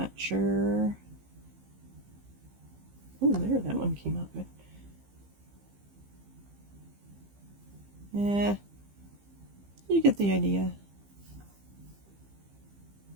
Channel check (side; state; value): left; late; 15 ms